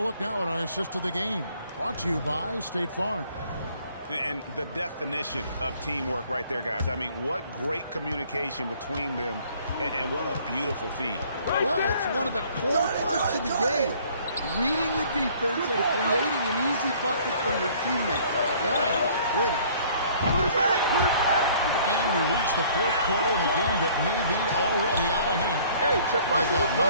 look now at our assist of the game? Brought to you by State Farm. And the definition of teamwork right there, guys. I mean, what great communication between them, and what a beautiful feed. Well, it's one of the core parts of the game. Reading the defense and creating an easy bucket for your teammate. That is pretty. Put it back! Put it back! And we reach the fourth quarter in a game that may be already out of hand. Hey, Check They got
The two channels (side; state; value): both; inverted; correlation -0.56